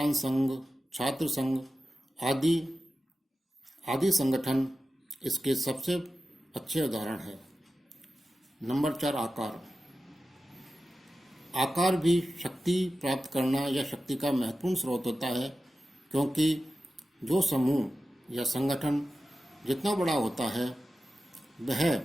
संघ, छात्र संघ आदि संगठन इसके सबसे अच्छे उदाहरण है। नंबर 4, आकार। आकार भी शक्ति प्राप्त करना या शक्ति का महत्वपूर्ण स्रोत होता है, क्योंकि जो समूह या संगठन जितना बड़ा होता है वह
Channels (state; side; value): normal; both; correlation 0.93